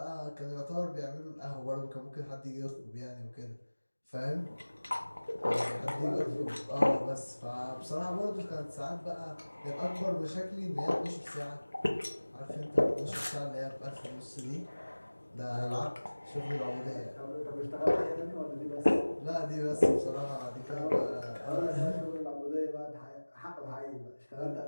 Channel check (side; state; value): both; inverted; correlation -1.00